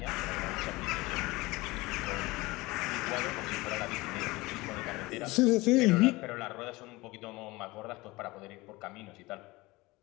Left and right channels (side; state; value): right; quieter; 21.6 dB